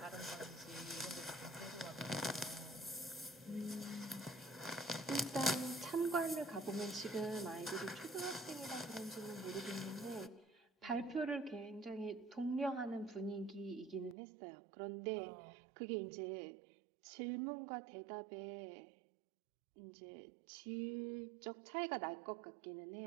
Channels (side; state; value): left; drops out; at 14.2 s